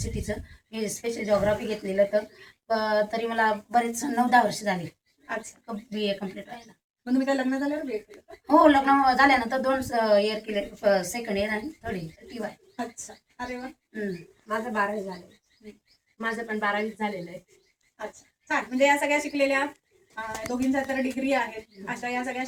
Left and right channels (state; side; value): identical; both; correlation 1.00